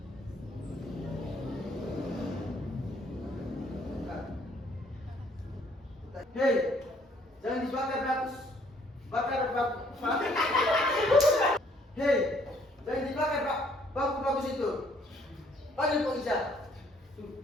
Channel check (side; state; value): both; normal; correlation 0.64